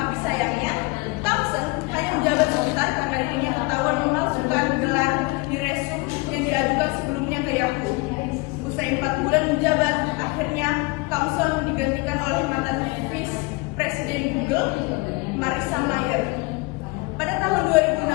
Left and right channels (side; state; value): right; quieter; 25.4 dB